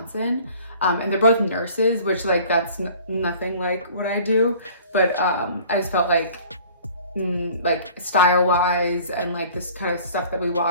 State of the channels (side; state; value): both; inverted; correlation -0.49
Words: and they're both nurses, which like that's nothing like what I do, but I just felt like style wise and like this kind of stuff that we